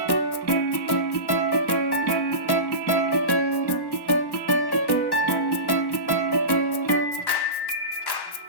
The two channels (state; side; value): late; right; 1.1 ms